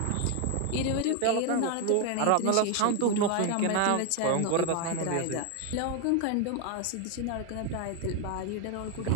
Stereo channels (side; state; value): both; different; correlation 0.01